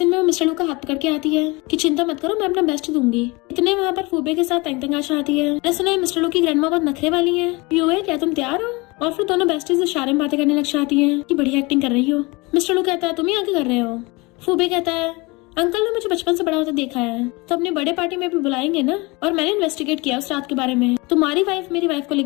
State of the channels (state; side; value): quieter; right; 25.3 dB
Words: में वो मिस्टर लू का हाथ पकड़ के आती है कि चिंता मत करो मैं अपना बेस्ट दूंगी। इतने वहाँ पर फूबे के साथ तंग आ जाती है। मैंने सुना है मिस्टर लू की ग्रैंडमा बहुत नखरे वाली है। यू है क्या तुम तैयार हो? और फिर दोनों बेस्टीज इशारे में बातें करने लग जाती है कि बढ़िया एक्टिंग कर रही हो। मिस्टर लू कहता है तुम ही आगे कर रहे हो? फूबे कहता है अंकल ने मुझे बचपन से बड़ा होता देखा है तो अपनी बर्थडे पार्टी में भी बुलाएंगे ना। और मैंने इन्वेस्टिगेट किया उस रात के बारे में। तुम्हारी वाइफ मेरी वाइफ को